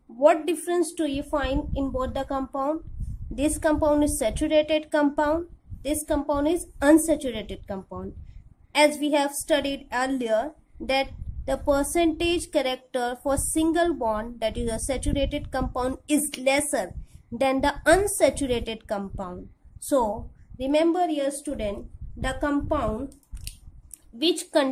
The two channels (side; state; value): both; identical; correlation 1.00